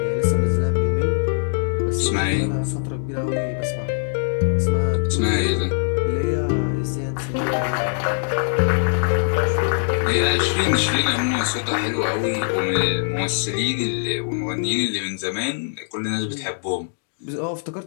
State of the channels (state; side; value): silent; right; digital silence